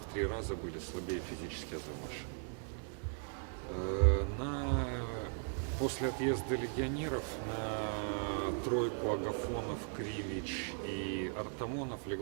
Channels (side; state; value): left; silent; 52 dB below the other